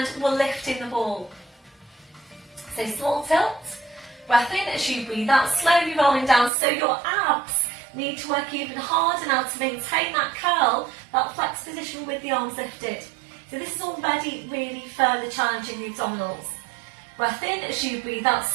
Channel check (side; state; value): left; drops out; at 6.5 s